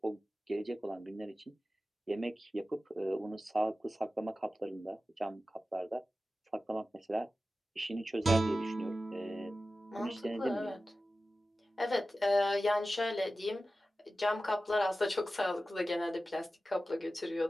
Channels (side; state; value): both; normal; correlation 0.94